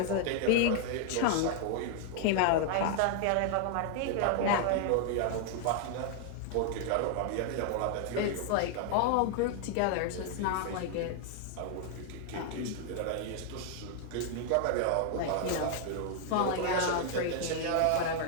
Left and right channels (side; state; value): both; different; correlation 0.00